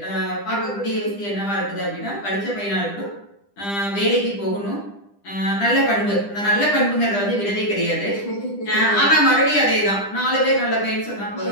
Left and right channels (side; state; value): right; late; 10 ms